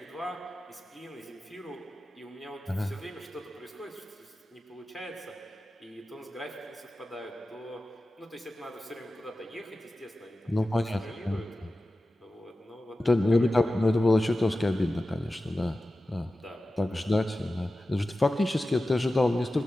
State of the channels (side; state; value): both; normal; correlation 0.94